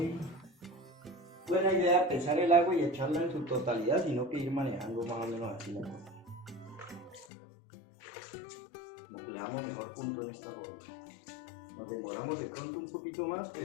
buena idea pesar el agua y echarla en su totalidad, sino que ir manejando más o menos así la cosa. Como que le damos mejor punto en esta forma. Nos demoramos de pronto un poquito más,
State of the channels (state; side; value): drops out; right; at 7.2 s